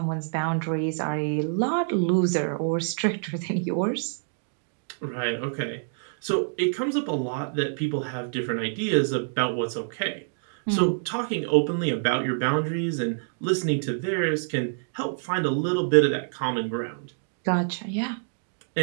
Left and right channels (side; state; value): left; silent; digital silence